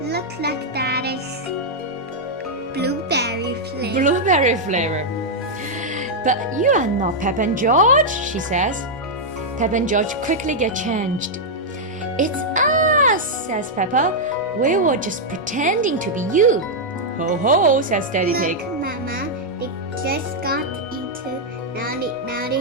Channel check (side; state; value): both; normal; correlation -0.04